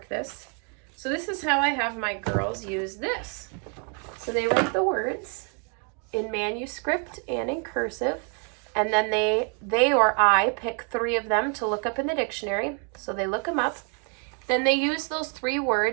this. So this is how I have my girls use this. So they write the words in manuscript and in cursive, and then they or I pick 3 of them to look up in the dictionary. So they look them up. Then they use those 3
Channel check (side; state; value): left; quieter; 39.8 dB